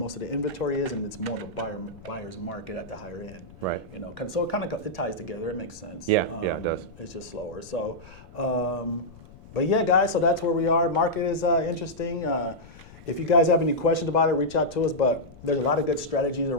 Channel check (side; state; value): left; noise; rumble, 20 dB below the sound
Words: of the inventory is, and it's more of a buyer's market at the higher end. Right. So it ties together. It makes sense. Yeah, it does. It's just slower. So, but yeah, guys. So that's where we are. Market is interesting. If you guys have any questions about it, reach out to us. But there's a lot of good strategies